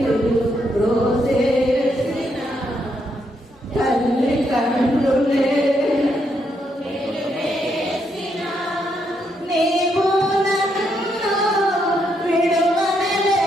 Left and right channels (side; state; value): both; normal; correlation 0.77